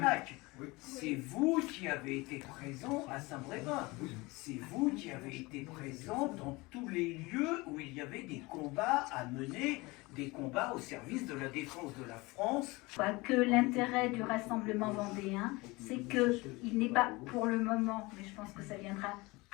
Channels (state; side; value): quieter; right; 23.3 dB